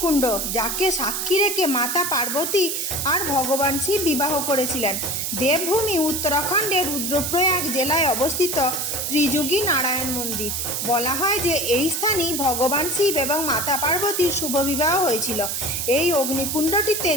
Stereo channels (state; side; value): noise; right; hiss, 2 dB below the sound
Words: যাকে সাক্ষী রেখে মাতা পার্বতী আর ভগবান শিব বিবাহ করেছিলেন। দেবভূমি উত্তরাখণ্ডের রুদ্রপ্রয়াগ জেলায় অবস্থিত ত্রিযুগী নারায়ণ মন্দির। বলা হয় যে এই স্থানেই ভগবান শিব এবং মাতা পার্বতীর শুভ বিবাহ হয়েছিল। এই অগ্নিকুণ্ডটিতে